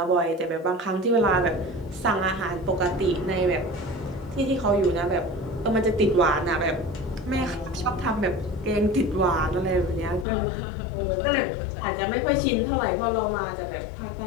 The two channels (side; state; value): right; drops out; at 10.2 s